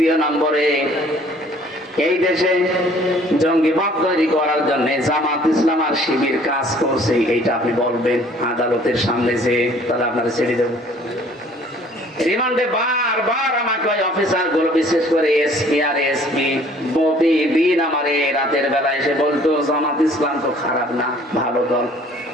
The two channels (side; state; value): both; normal; correlation 0.56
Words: নম্বরে, এই দেশে জঙ্গিবাদ তৈরি করার জন্য জামাত ইসলাম আর শিবির কাজ করছে, এইটা আপনি বলবেন আদালতের সামনে, যে তাহলে আপনারা ছেড়ে দেব। রিমান্ডে বারবার আমাকে ওই অফিসার গুলো, বিশেষ করে এসপি আর এসপি, প্রতিদিন আমার রাতের বেলা এসে বলতো জামাত ইসলাম তো খারাপ না, ভালো দল,